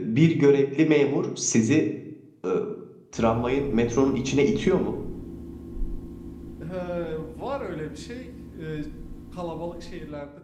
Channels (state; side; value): identical; both; correlation 1.00